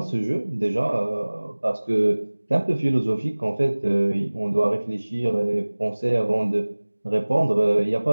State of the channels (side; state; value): both; inverted; correlation -1.00